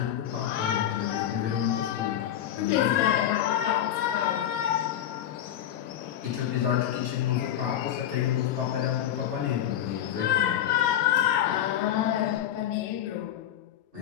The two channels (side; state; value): right; quieter; 11.0 dB